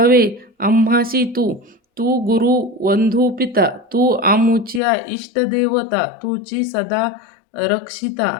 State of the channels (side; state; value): right; drops out; at 4.8 s